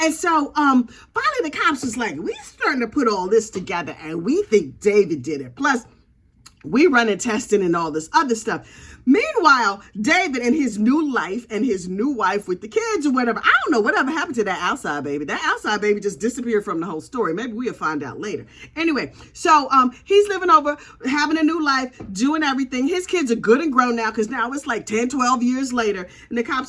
so finally the cops was like, we starting to put all this together and we think David did it. Plus, we running testing and all this other stuff. Meanwhile, David and his new life and his new wife with the kids or whatever, I don't know whatever happened to that outside baby. That outside baby just disappeared from the whole story. Maybe we'll find out later. Anyway, so he's living over, having a new life, doing everything. His kids are good and grown now because now it's like 10, 12 years later. And the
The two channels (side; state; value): both; identical; correlation 1.00